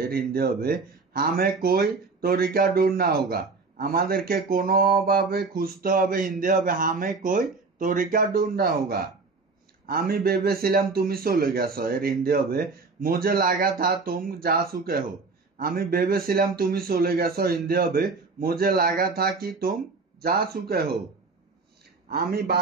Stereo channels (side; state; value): left; quieter; 4.2 dB